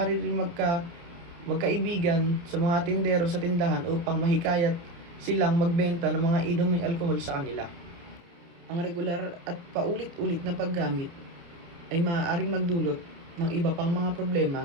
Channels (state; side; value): late; left; 29 ms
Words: rin magkaibigan sa mga tindero sa tindahan upang mahikayat silang magbenta ng mga inuming alkohol sa kanila. Ang regular at paulit-ulit na paggamit ay maaaring magdulot ng iba pang mga